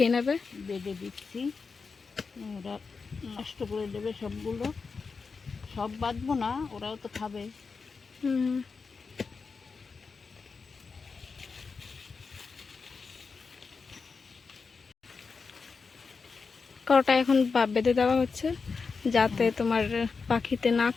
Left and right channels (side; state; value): right; quieter; 4.9 dB